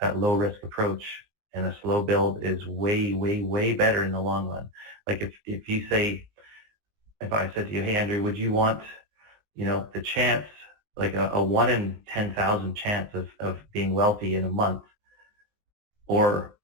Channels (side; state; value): left; late; 19 ms